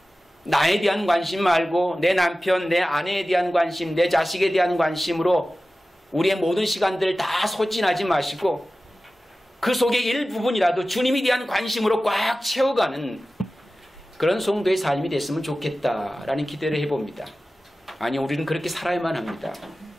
나에 대한 관심 말고 내 남편, 내 아내에 대한 관심, 내 자식에 대한 관심으로 우리의 모든 시간들을 다 소진하지 마시고 그 속의 일부분이라도 주님에 대한 관심으로 꽉 채워가는 그런 성도의 삶이 됐으면 좋겠다라는 기대를 해봅니다. 아니, 우리는 그렇게 살아야만 합니다.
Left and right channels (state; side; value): normal; both; correlation 0.96